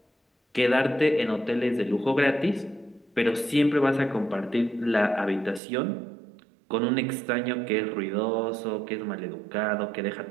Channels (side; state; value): left; drops out; at 5.6 s